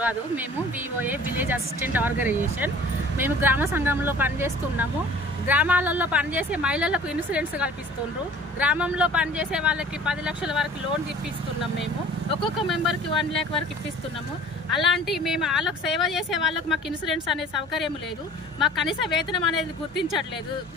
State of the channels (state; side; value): normal; both; correlation 0.47